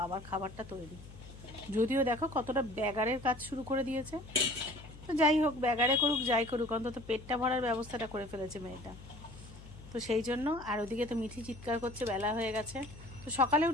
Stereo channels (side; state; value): left; noise; hum, 17 dB below the sound